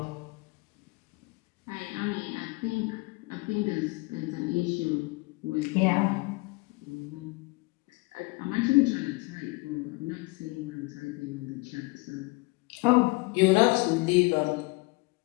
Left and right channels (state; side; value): quieter; right; 25.7 dB